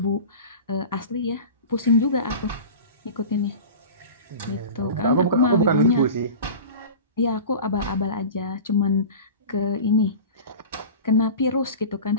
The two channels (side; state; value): both; inverted; correlation -0.34